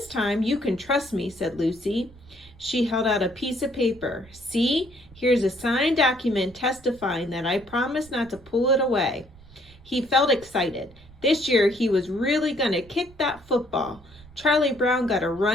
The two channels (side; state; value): right; noise; rumble, 23 dB below the sound